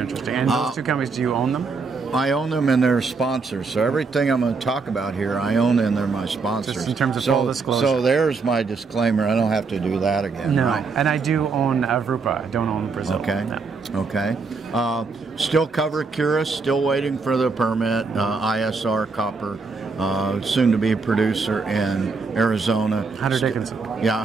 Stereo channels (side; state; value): left; quieter; 4.5 dB